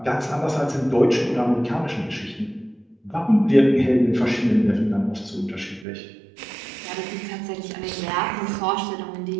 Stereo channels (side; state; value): left; drops out; at 5.9 s